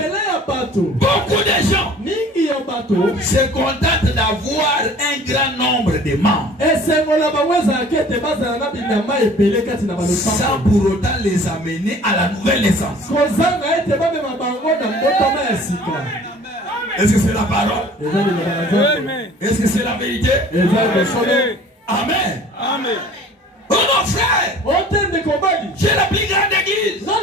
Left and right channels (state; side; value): normal; both; correlation 0.48